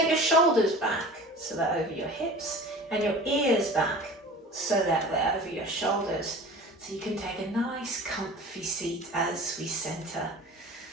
your shoulders back so they're over your hips, and your ears back so that they're over your shoulders. So you can take a nice comfy seat as we center.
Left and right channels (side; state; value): both; normal; correlation 0.40